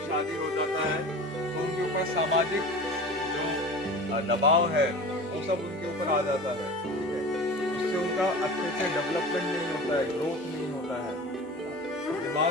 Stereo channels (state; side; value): normal; both; correlation 0.36